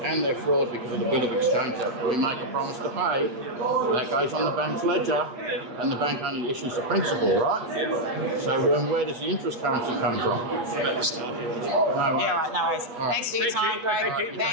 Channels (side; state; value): left; late; 8.5 ms